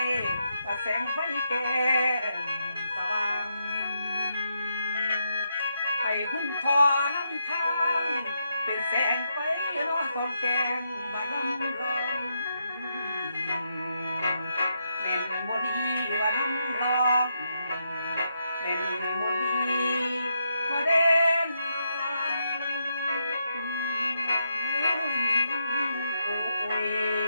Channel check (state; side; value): inverted; both; correlation -0.81